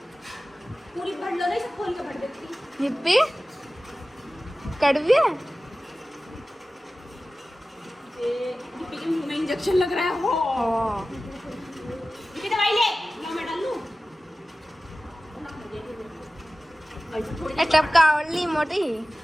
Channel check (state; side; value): normal; both; correlation 0.96